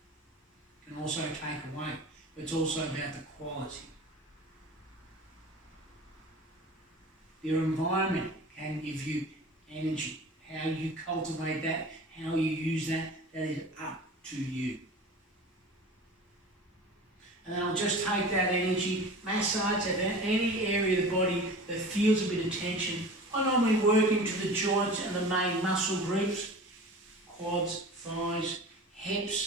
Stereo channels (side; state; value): both; normal; correlation 0.38